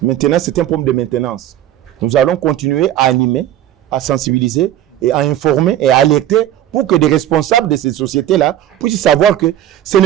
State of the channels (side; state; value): left; quieter; 12.1 dB